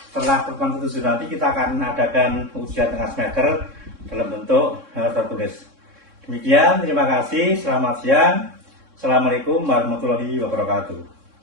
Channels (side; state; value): left; late; 3.6 ms